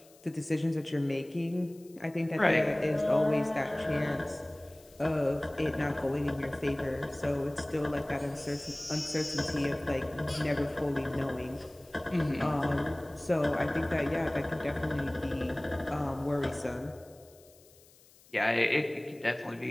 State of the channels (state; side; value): noise; left; hiss, 26 dB below the sound